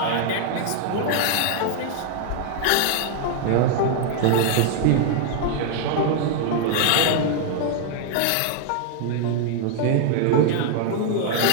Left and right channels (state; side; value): different; both; correlation 0.00